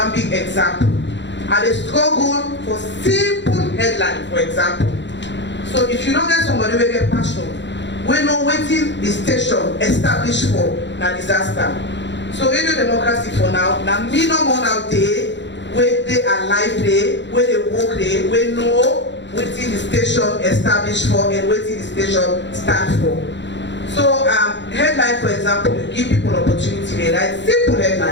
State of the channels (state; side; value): late; right; 0.52 ms